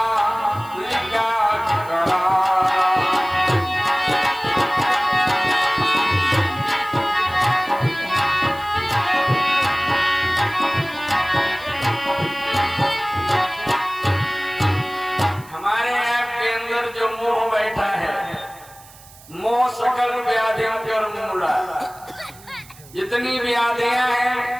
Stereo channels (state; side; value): noise; right; hiss, 22 dB below the sound